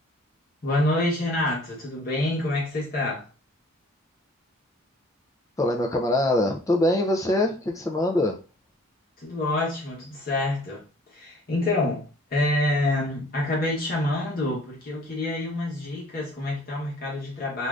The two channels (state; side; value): normal; both; correlation 0.54